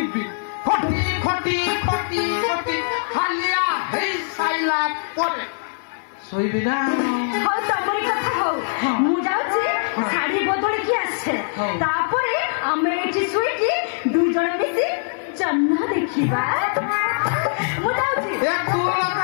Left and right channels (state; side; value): silent; right; digital silence